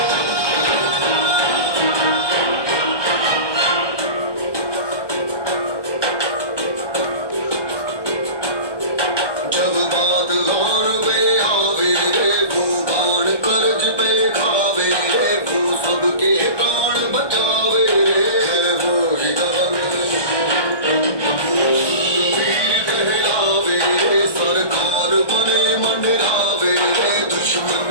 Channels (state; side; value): late; right; 1.1 ms